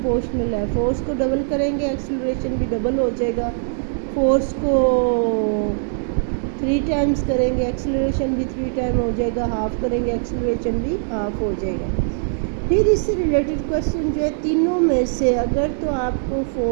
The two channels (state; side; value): silent; left; digital silence